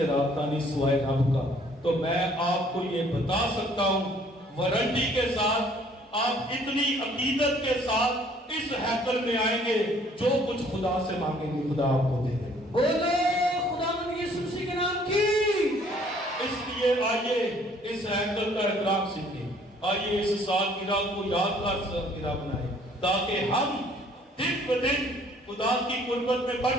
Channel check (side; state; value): both; normal; correlation 0.59